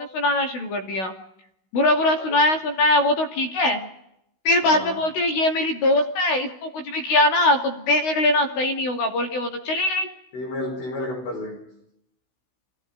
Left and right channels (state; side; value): late; right; 16 ms